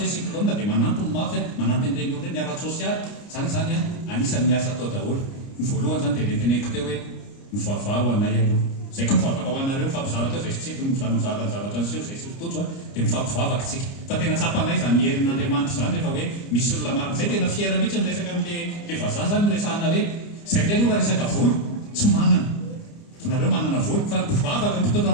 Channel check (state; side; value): late; right; 29 ms